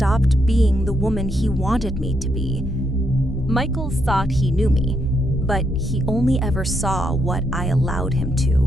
being the woman he wanted me to be. Michael thought he knew me, but he only ever saw what I allowed him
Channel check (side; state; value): both; normal; correlation 0.78